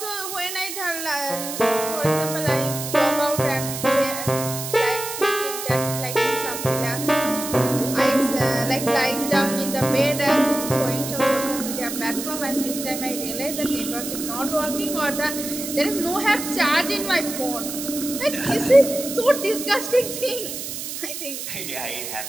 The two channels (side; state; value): right; noise; hiss, 7 dB below the sound